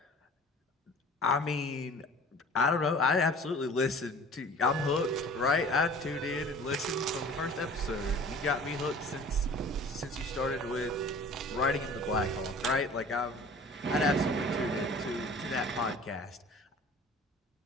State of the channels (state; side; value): normal; both; correlation 0.46